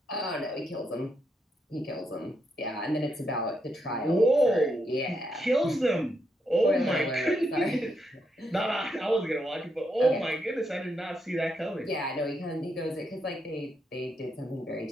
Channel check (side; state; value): both; normal; correlation 0.80